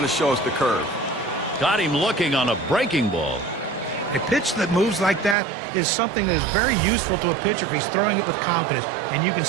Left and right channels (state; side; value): drops out; left; at 5.4 s